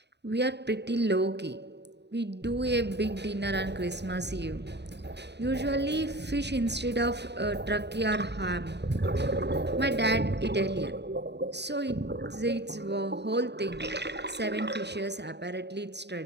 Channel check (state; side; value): late; left; 0.50 ms